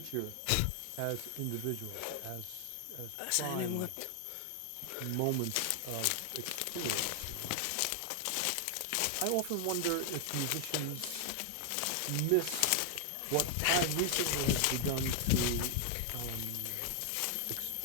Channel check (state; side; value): different; both; correlation 0.00